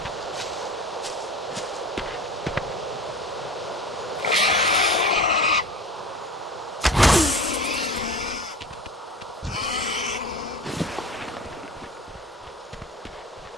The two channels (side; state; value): both; normal; correlation 0.36